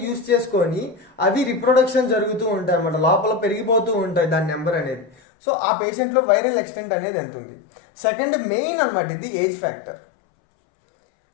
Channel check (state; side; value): drops out; right; at 5.2 s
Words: యూజ్ చేసుకొని అవి రిప్రొడక్షన్ జరుగుతూ ఉంటాయి అన్నమాట. లోపల పెరిగిపోతూ ఉంటాయి దాని నెంబర్ అనేది. సో ఆ పేషెంట్లో వైరల్ ఎక్స్టెంట్ అనేది ఎంత ఉంది. సెకండ్ మెయిన్ అనమాట ఇది ఏజ్ ఫ్యాక్టర్.